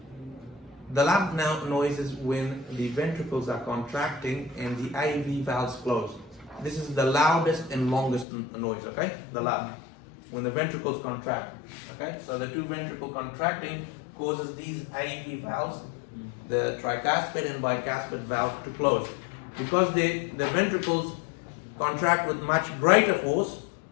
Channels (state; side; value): drops out; right; at 8.2 s